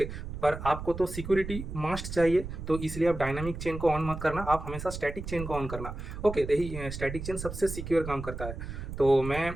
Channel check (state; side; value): noise; right; rumble, 8 dB below the sound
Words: पर आपको तो सिक्योरिटी मस्ट चाहिए, तो इसलिए आप डायनामिक चेन को ऑन मत करना, आप हमेशा स्टैटिक चेन को ऑन करना, ओके। तो यही स्टैटिक चेन सबसे सिक्योर काम करता है। तो मैं